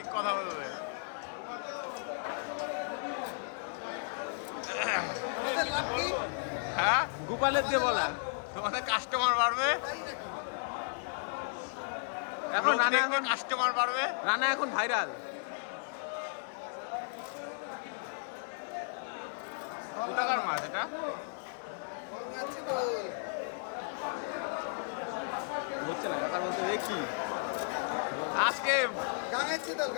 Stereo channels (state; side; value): silent; right; digital silence